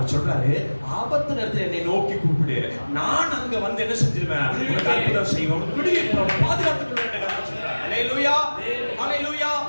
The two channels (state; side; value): inverted; both; correlation -1.00